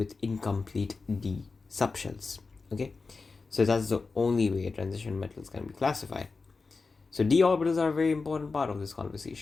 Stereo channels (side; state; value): right; quieter; 4.2 dB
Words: incomplete d subshells. Okay, so that's the only way transition metals can be classified. So d orbitals are a very important part of this